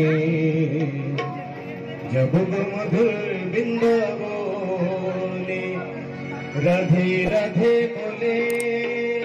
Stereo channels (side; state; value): both; identical; correlation 1.00